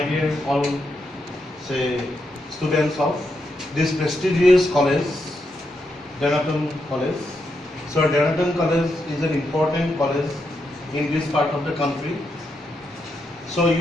dear all students of this prestigious college, Denaton College. So Denaton College is an important college in this part of the country. So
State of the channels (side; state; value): both; normal; correlation 0.83